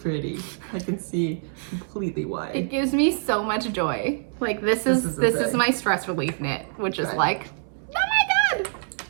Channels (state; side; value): silent; left; 62 dB below the other